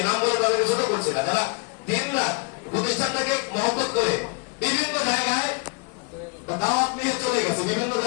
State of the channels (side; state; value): right; quieter; 33.6 dB